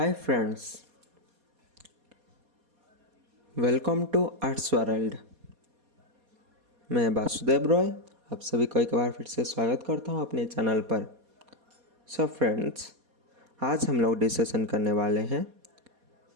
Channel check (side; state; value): left; late; 4.2 ms